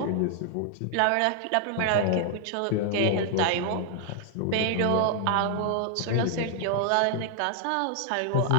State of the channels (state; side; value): different; both; correlation 0.00